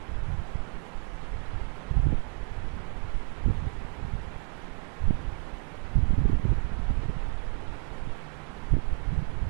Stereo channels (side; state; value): left; quieter; 38.0 dB